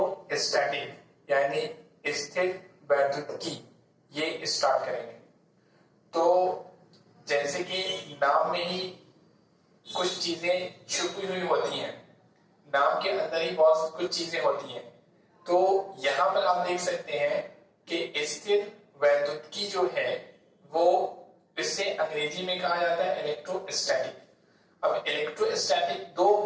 यानी स्थिर वैद्युतिकी ये स्टार्ट करेंगे। तो जैसे कि नाम में ही कुछ चीजें छुपी हुई होती हैं, नाम के अंदर ही बहुत कुछ चीजें होती हैं। तो यहाँ पर आप देख सकते हैं कि स्थिर वैद्युतिकी जो है वो इसे अंग्रेजी में कहा जाता है इलेक्ट्रोस्टैटिक। अब इलेक्ट्रोस्टैटिक दो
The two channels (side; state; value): both; identical; correlation 1.00